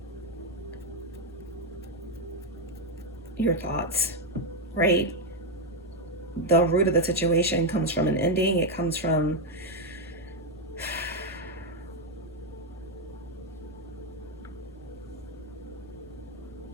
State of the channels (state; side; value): normal; both; correlation 0.03